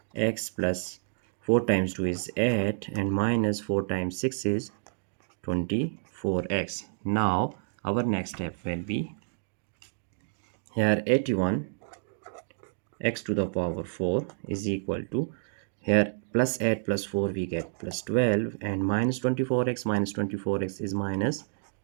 plus 4 times 2 is 8, and minus 4 times 6 is 24x. Now our next step will be, here 81 x to the power 4 is equal to, here plus 8 plus 4 we get plus 12, and minus 24x is minus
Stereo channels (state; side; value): silent; left; digital silence